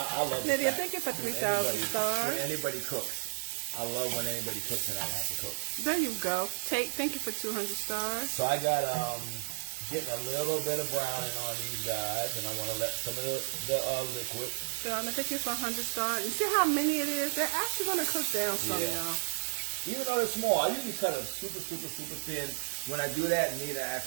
I love Lydia, thank you for 3,000 stars. When anybody cooks. I love when anybody cooks and I don't have to cook. There you go. Thank you for 200 stars. So I got getting a little bit of browning on these guys, and I want to let some of the liquid. Donna, thank you for 100 stars. You see how many it is? They're actually going to cook down some, y'all. Even though they're small, I usually cut them super, super, super thin. When I do that, Nita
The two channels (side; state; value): left; silent; 55 dB below the other